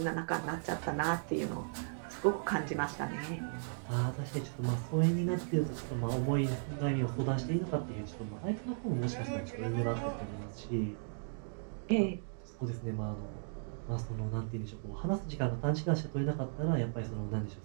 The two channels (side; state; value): left; silent; digital silence